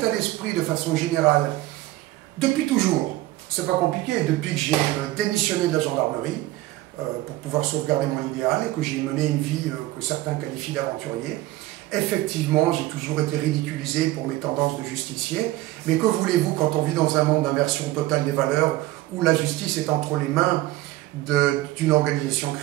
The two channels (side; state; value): left; quieter; 16.8 dB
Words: d'esprit de façon générale, depuis toujours, C'est pas compliqué. Depuis que j'ai démissionné de la gendarmerie pour pouvoir sauvegarder mon idéal et que j'ai mené une vie que certains qualifient d'aventurier, effectivement, j'ai toujours été ridiculisé pour mes tendances de justicier. Mais que voulez-vous quand on vit dans un monde d'inversion totale des valeurs où la justice est entre les mains d'une organisation